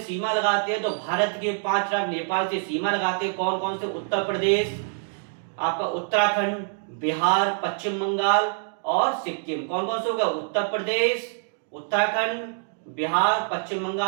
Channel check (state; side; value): silent; left; digital silence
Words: लगाते हैं? तो भारत के 5 राज्य नेपाल से सीमा लगाते हैं, कौन कौन से? उत्तर प्रदेश, आपका उत्तराखंड, बिहार, पश्चिम बंगाल और सिक्किम। कौन कौन से होगा? उत्तर प्रदेश, उत्तराखंड, बिहार, पश्चिम